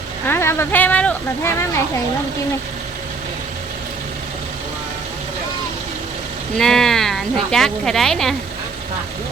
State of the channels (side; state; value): left; quieter; 4.5 dB